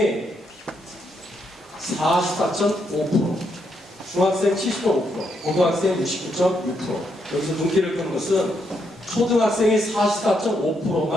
44.5%, 중학생 70.5%, 고등학생 69.6%. 여기서 눈길을 끄는 것은 초등학생이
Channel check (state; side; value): normal; both; correlation 0.78